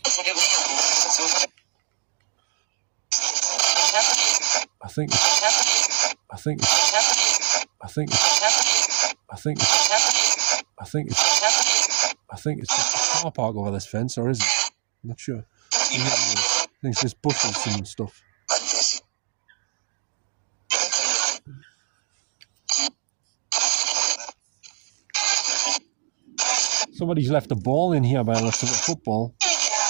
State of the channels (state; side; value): silent; left; digital silence